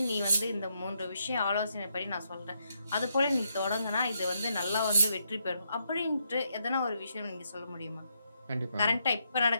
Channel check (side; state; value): both; inverted; correlation -0.78